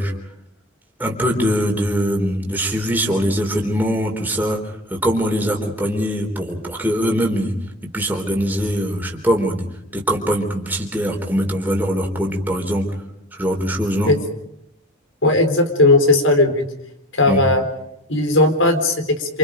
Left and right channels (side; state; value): both; normal; correlation 0.33